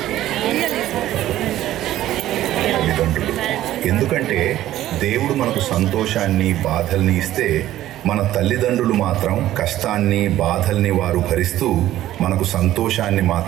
తల్లిదండ్రులు. ఎందుకంటే దేవుడు మనకు సంతోషాన్ని బాధల్ని ఇస్తే మన తల్లిదండ్రులు మాత్రం కష్టాన్ని బాధల్ని వారు భరిస్తూ మనకు సంతోషాన్ని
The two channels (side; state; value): left; quieter; 13.7 dB